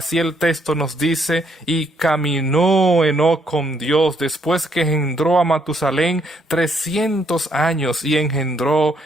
el texto nos dice: y caminó Enoc con Dios después que engendró a Matusalén 300 años y engendró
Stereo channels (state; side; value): normal; both; correlation 0.71